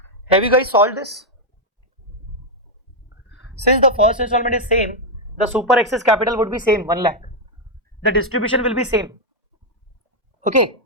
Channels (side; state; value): both; normal; correlation 0.00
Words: Have you guys solved this? Since the first installment is same, the super excess capital would be same, 1 lakh. The distribution will be same. Okay.